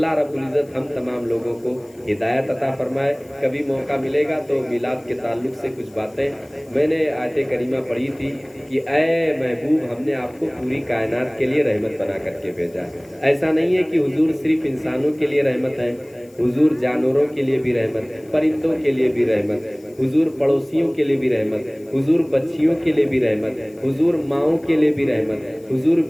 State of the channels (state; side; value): noise; left; hiss, 29 dB below the sound